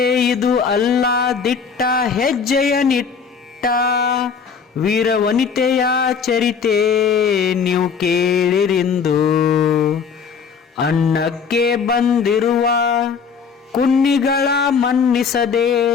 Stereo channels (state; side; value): quieter; right; 6.1 dB